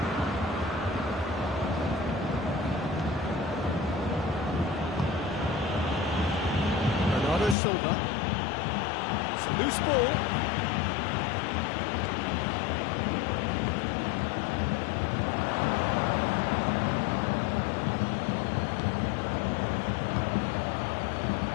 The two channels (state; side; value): drops out; right; at 7.6 s